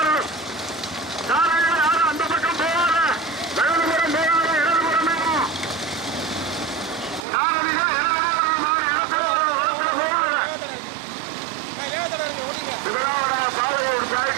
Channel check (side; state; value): left; drops out; at 7.2 s